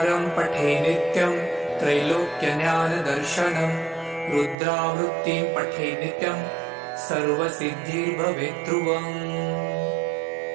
पठे नित्यं त्रैलोक्यज्ञानदर्शनम्। रुद्रावृत्तिं पठे नित्यं सर्वसिद्धिर्भवेत् ध्रुवम्।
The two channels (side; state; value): left; drops out; at 4.5 s